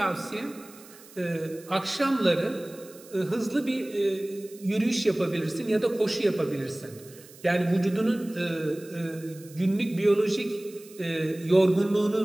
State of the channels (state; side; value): noise; right; hiss, 21 dB below the sound